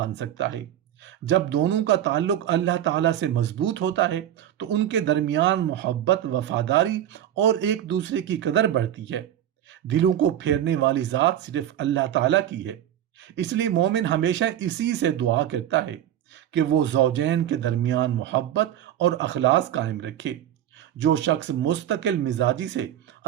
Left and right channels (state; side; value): quieter; left; 11.2 dB